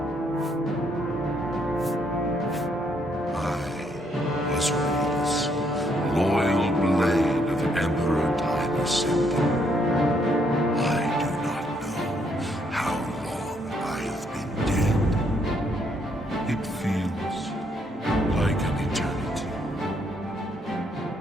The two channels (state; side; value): normal; both; correlation 0.72